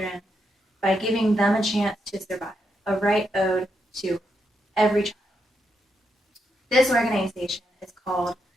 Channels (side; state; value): both; normal; correlation 0.82